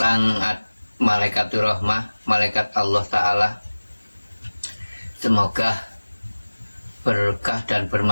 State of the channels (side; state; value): both; inverted; correlation -1.00